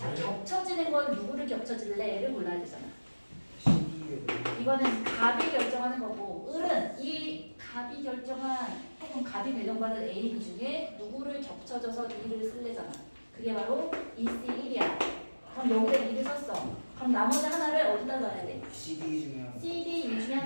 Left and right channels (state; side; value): inverted; both; correlation -1.00